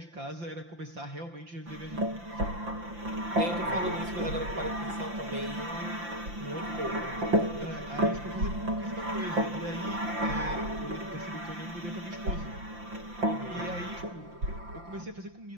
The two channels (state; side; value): late; left; 5.8 ms